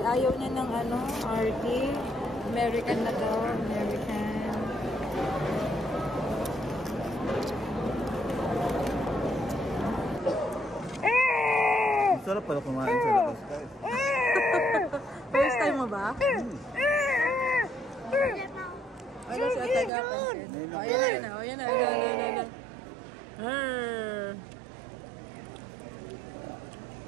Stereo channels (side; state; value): left; drops out; at 19.9 s